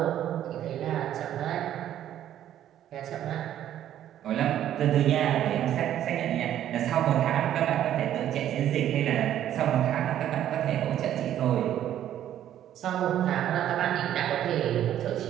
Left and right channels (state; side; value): quieter; left; 11.3 dB